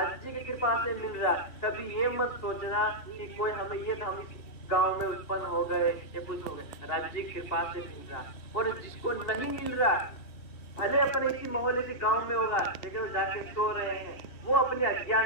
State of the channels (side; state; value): right; late; 2.7 ms